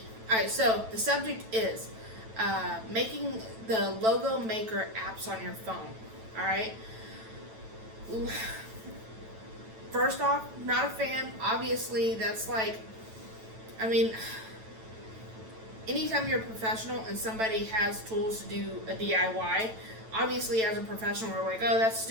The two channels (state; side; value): late; left; 9.1 ms